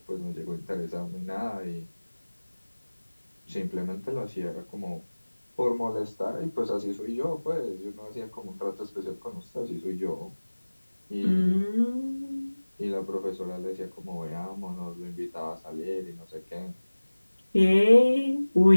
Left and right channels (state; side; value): inverted; both; correlation -1.00